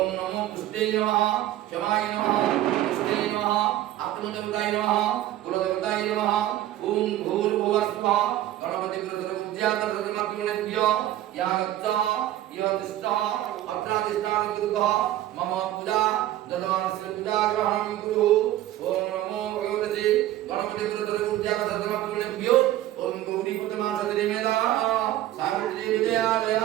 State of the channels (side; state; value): left; quieter; 13.8 dB